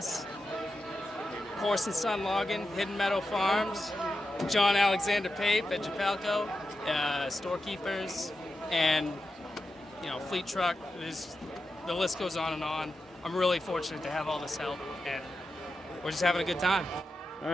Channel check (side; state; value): both; normal; correlation 0.90